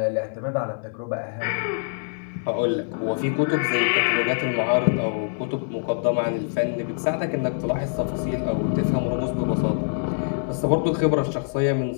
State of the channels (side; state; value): right; silent; digital silence